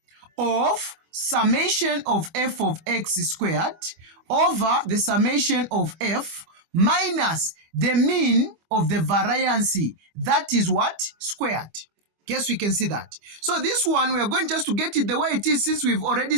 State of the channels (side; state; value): left; late; 25 ms